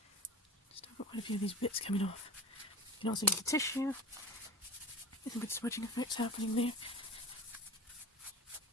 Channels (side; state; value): both; normal; correlation 0.34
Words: Just have got quite a few of these bits coming off. You can also use the tissue. There's some good smudging effects happening there.